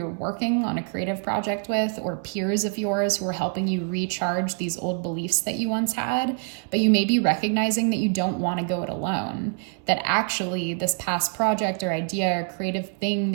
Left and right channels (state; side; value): quieter; left; 39.9 dB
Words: working on a creative project with, or peers of yours who are helping you recharge these old beliefs that you once had. But you may be recognizing that you don't want to go it alone, that actually this past project or idea or creative thing